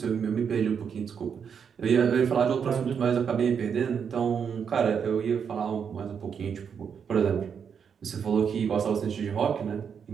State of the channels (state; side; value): quieter; left; 7.0 dB